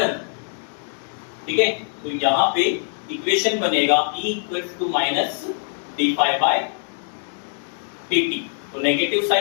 ठीक है, तो यहाँ पे इक्वेशन बनेगा E equals to minus d phi by dt। तो नेगेटिव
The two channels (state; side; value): silent; right; digital silence